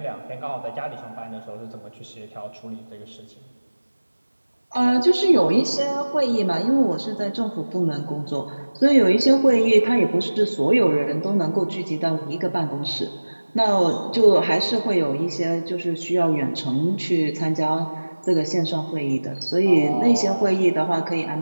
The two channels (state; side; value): inverted; both; correlation -1.00